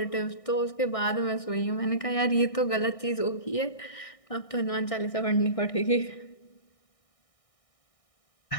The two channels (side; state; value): right; late; 1.6 ms